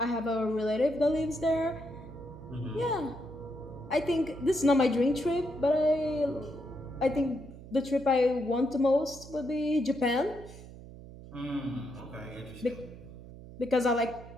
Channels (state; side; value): noise; right; hum, 16 dB below the sound